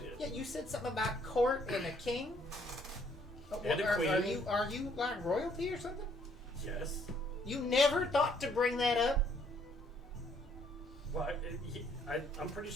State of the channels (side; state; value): both; normal; correlation 0.66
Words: Yeah, you said something about court and a king? And a queen. Are you, like, royalty or something? Yes. You never thought to bring that up? Well, I'm pretty